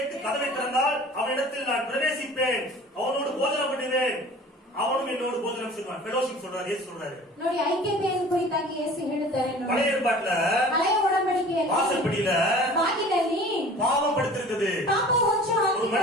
கதவை திறந்தால் அவனிடத்தில் நான் பிரவேசிப்பேன், அவனோடு போஜனம் பண்ணுவேன், அவனும் என்னோடு போஜனம் செய்வான். ஃபெலோஷிப் சொல்றாரு, இயேசு சொல்றாரு. ನೋಡಿ, ಐಕ್ಯತೆಯನ್ನು ಕುರಿತಾಗಿ ಯೇಸು ಹೇಳುತ್ತಾರೆ ನೋಡಿ. பழைய ஏற்பாட்டுல ಹಳೆಯ ಒಡಂಬಡಿಕೆಯಲ್ಲಿ வாசற்படியில ಬಾಗಿಲಲ್ಲಿ பாவம் படுத்திருக்குது. ಪಾಪ ಹೊಚ್ಚು ஒரு மனிதன்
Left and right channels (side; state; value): both; normal; correlation 0.44